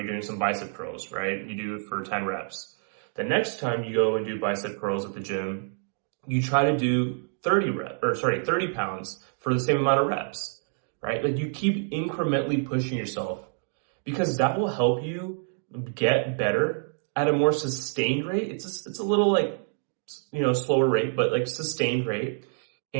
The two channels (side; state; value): left; silent; 60 dB below the other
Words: some bicep curls, right? You do it for 10 reps. The next time you go and do bicep curls at the gym, you try to do 30 pounds for the same amount of reps, right? Like you keep incrementally pushing yourself because that will help you get better at a more sustained rate. It's a little like, slower rate, but like sustained rate.